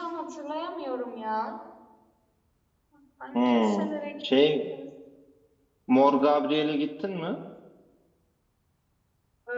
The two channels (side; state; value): both; identical; correlation 1.00